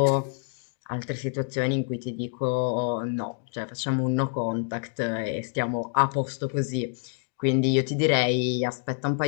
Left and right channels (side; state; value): right; silent; 60 dB below the other